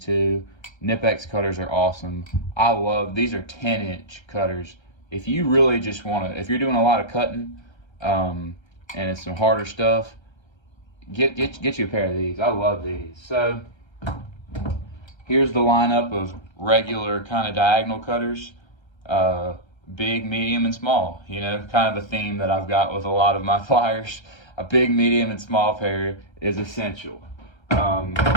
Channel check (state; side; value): late; right; 1.3 ms